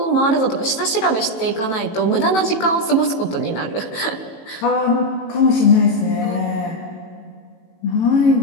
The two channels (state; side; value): late; right; 18 ms